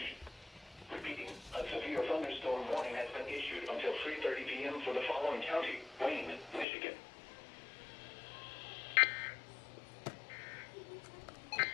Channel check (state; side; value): drops out; right; at 6.7 s